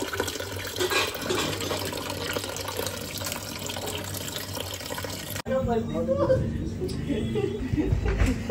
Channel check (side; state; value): both; identical; correlation 1.00